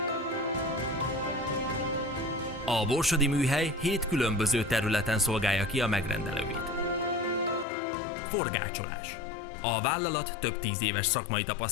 A borsodi műhely 7 különböző területen szolgálja ki a megrendelőit. Forgácsolás. A vállalat több 10 éves szakmai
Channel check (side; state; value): right; drops out; at 7.7 s